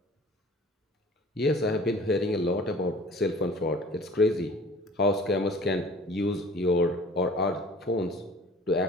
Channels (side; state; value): both; normal; correlation 0.48